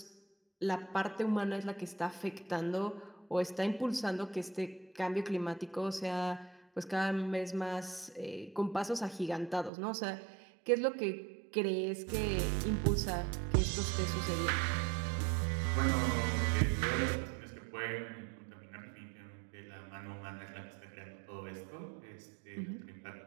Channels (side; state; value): left; drops out; at 9.7 s